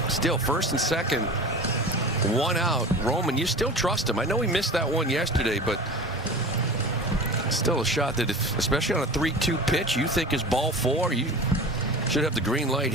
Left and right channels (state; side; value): normal; both; correlation 0.36